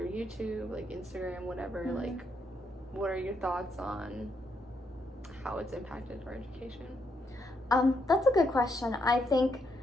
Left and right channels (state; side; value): normal; both; correlation 0.77